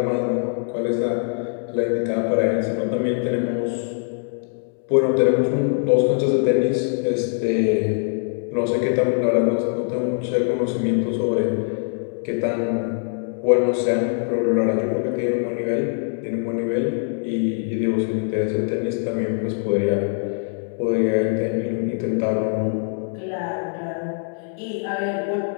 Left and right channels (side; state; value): right; silent; 64 dB below the other